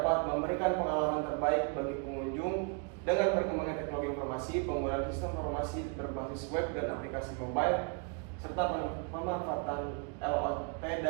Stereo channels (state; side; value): quieter; left; 35.1 dB